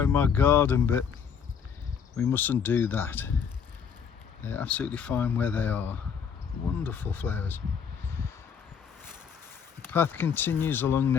my garden, but we mustn't do that. They're absolutely fine where they are. Wonderful flowers. The path continues along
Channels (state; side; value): quieter; right; 7.0 dB